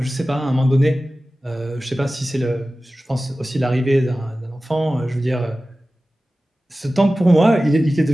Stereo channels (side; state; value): both; normal; correlation 0.96